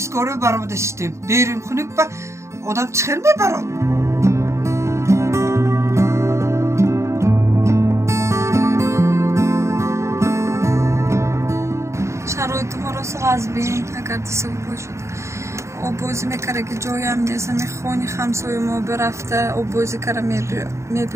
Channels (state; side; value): late; left; 0.14 ms